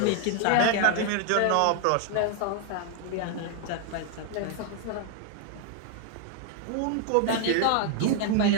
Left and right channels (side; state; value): both; different; correlation 0.00